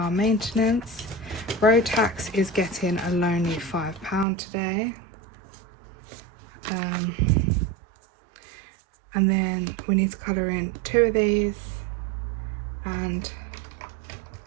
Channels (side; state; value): left; drops out; at 4.2 s